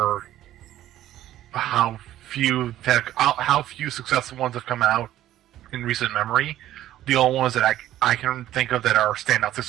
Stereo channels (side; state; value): left; quieter; 13.3 dB